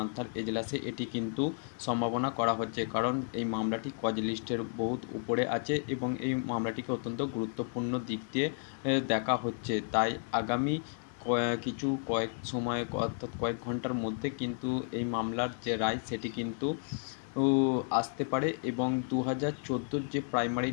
এজলাসে। এটি কিন্তু সম্ভাবনা করা হচ্ছে, কারণ এই মামলাটি কজ লিস্টের বহুত উপরে আছে এবং এই মামলাটিকে অত্যন্ত গুরুত্বপূর্ণ দিক দিয়ে দেখা হচ্ছে। তাই আগামী কয়েক সময় অর্থাৎ কয়েক ঘন্টার মধ্যে কিন্তু এই মামলার যে রায় সেটি কিন্তু আসতে পারে এবং 2014 যে প্রাইমারি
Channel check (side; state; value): right; silent; 56 dB below the other